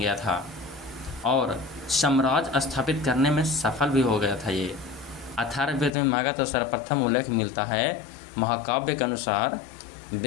था और साम्राज्य स्थापित करने में सफल भी हो गया था। ये अथर्ववेद में मगध का सर्वप्रथम उल्लेख मिलता है। महाकाव्य के अनुसार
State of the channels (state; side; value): drops out; right; at 5.9 s